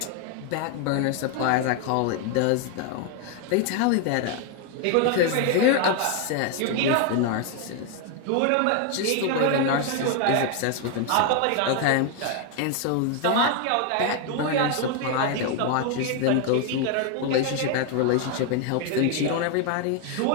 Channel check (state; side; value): different; both; correlation 0.01